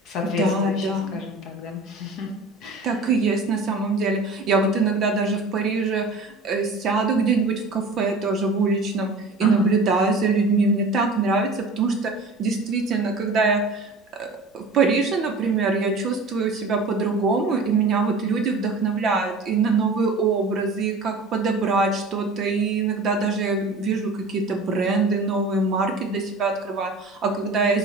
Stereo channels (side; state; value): left; quieter; 3.3 dB